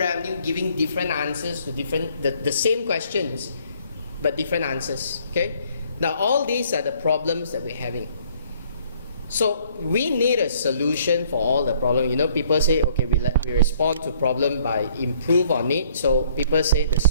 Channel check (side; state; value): both; inverted; correlation -0.61